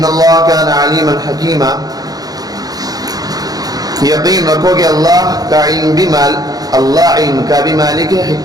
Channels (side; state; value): left; late; 0.18 ms